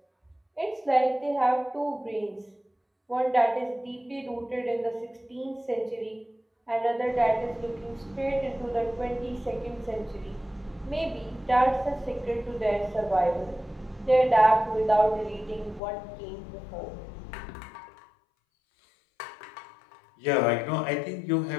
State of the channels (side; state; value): right; drops out; at 15.8 s